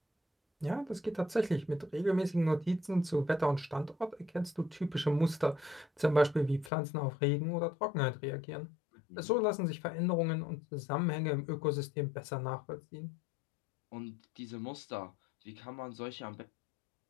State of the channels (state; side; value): drops out; right; at 6.7 s